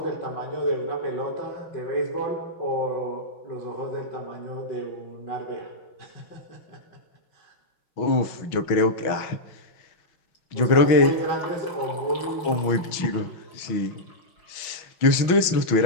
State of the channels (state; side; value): late; right; 6.2 ms